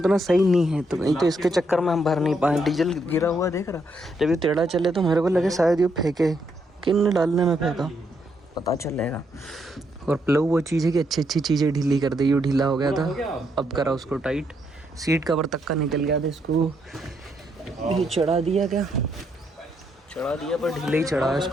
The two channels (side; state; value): both; normal; correlation 0.76